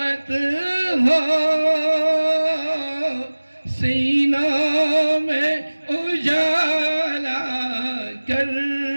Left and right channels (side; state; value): both; inverted; correlation -1.00